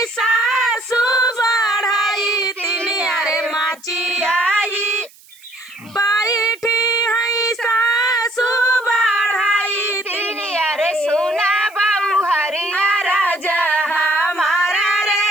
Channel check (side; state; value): right; noise; hiss, 26 dB below the sound